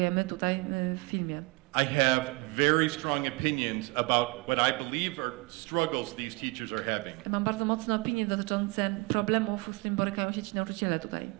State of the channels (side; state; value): left; quieter; 27.5 dB